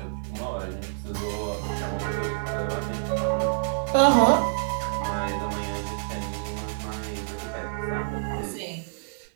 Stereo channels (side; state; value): left; silent; digital silence